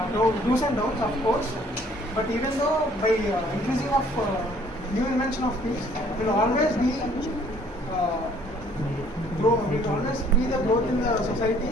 do's and don'ts, of course. But even though by increasing of new invention of things, will always be the growth in the society,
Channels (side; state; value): both; normal; correlation 0.59